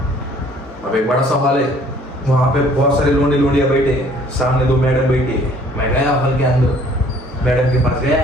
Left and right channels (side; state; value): both; normal; correlation 0.57